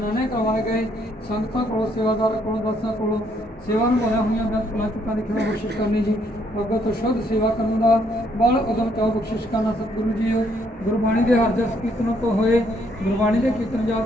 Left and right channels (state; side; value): normal; both; correlation 0.70